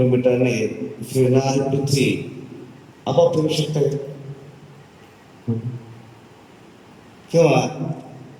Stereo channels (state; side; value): identical; both; correlation 1.00